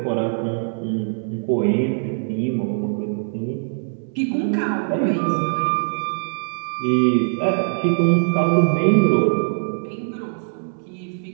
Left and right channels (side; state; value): left; silent; digital silence